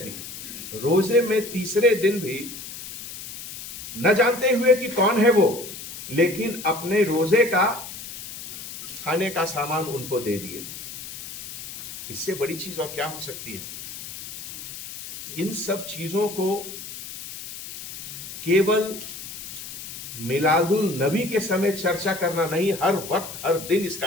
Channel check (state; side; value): noise; left; hiss, 11 dB below the sound